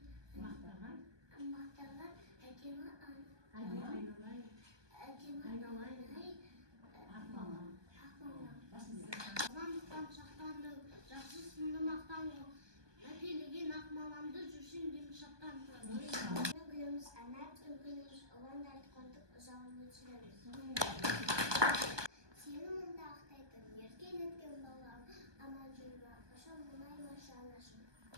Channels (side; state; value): left; late; 1.2 ms